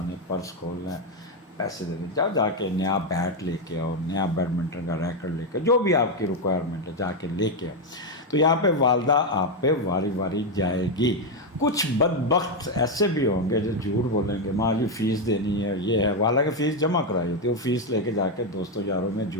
نے پرس کھولنا ہے، پیسے دینے، جا کے نیا بیٹ لے کے آؤ، نیا بیڈمنٹن کا ریکٹ لے کے، جو بھی آپ کی ریکوائرمنٹ ہے جا کے لے کے آؤ۔ تو یہاں پہ والدہ آپ پہ واری واری جائے گی۔ کچھ بدبخت ایسے بھی ہوں گے جو جھوٹ بولیں گے، ماں جی فیس دینی ہے، یہ ہے، حالانکہ فیس جمع کرائی ہوتی ہے، وہ فیس لے کے جا کے دوستوں یاروں میں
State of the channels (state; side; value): normal; both; correlation 0.05